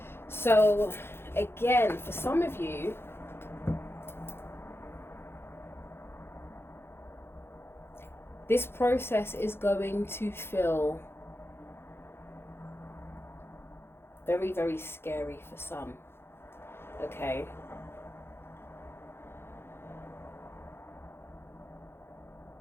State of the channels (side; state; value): right; late; 0.11 ms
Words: So, again, for some of you, this process is going to feel very, very scary for some, okay?